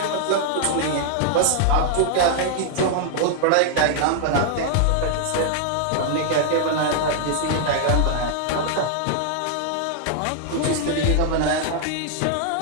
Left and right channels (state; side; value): different; both; correlation 0.00